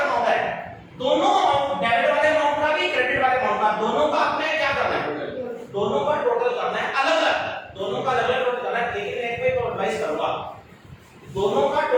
होता है, दोनों अमाउंट, डेबिट वाले अमाउंट का भी क्रेडिट वाले अमाउंट का, दोनों का आपने क्या करना है, दोनों का टोटल करना है, अलग अलग दोनों का अलग अलग टोटल करना है। लेकिन एक पे तो एडवाइस करूंगा, दोनों का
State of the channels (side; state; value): both; identical; correlation 1.00